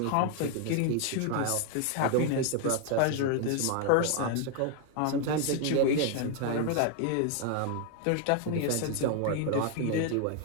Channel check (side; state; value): both; different; correlation 0.00